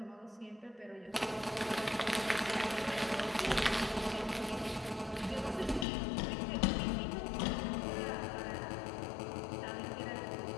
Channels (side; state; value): right; drops out; at 5.9 s